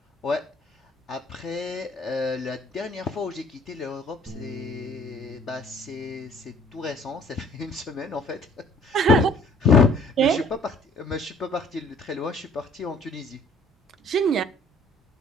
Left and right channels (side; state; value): both; normal; correlation 0.56